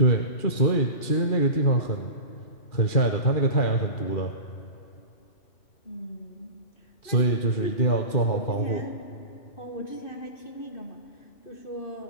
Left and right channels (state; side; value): late; right; 2.4 ms